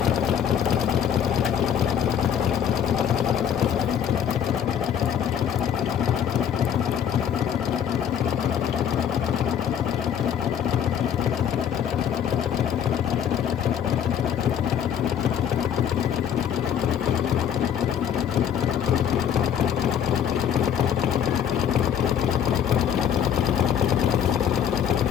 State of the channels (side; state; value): right; quieter; 8.9 dB